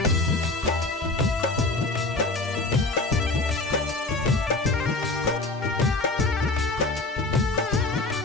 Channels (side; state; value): right; quieter; 3.2 dB